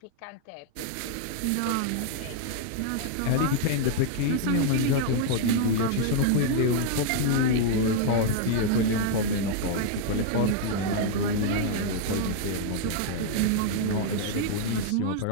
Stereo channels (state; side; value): different; both; correlation 0.00